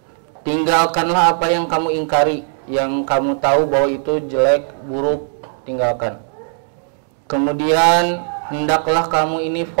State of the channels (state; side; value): silent; left; digital silence